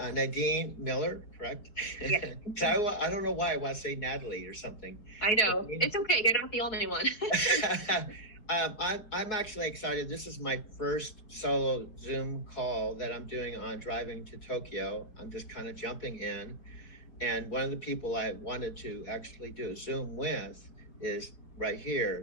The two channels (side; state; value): right; late; 4.7 ms